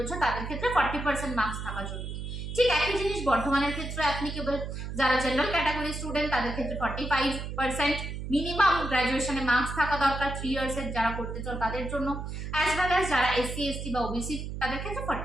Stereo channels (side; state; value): right; noise; hum, 6 dB below the sound